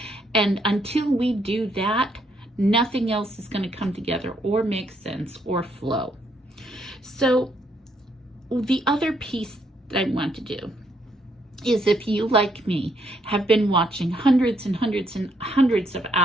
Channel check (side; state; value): both; normal; correlation 0.72